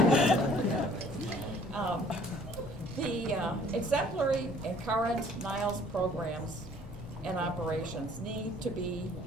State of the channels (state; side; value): normal; both; correlation 0.56